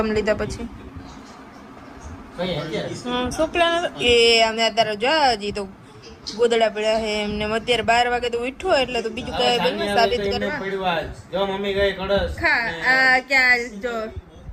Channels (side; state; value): both; identical; correlation 1.00